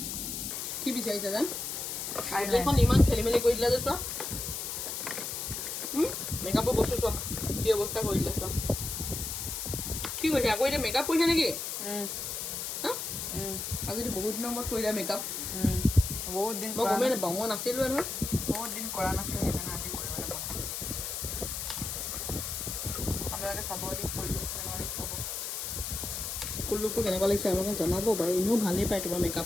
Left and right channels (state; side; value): noise; left; hiss, 4 dB below the sound